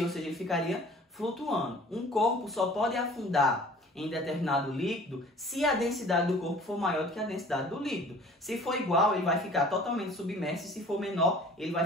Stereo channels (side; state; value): both; normal; correlation 0.48